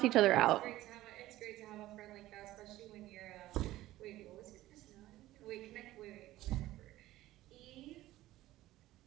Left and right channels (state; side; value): quieter; left; 15.8 dB